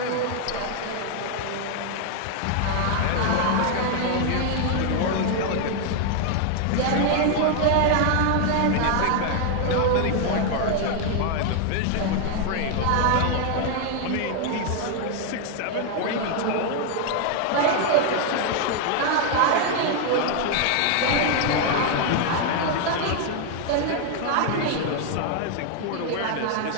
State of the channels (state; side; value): different; both; correlation 0.00